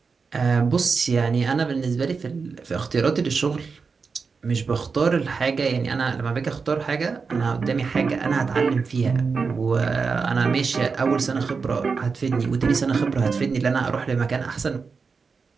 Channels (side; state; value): left; quieter; 5.0 dB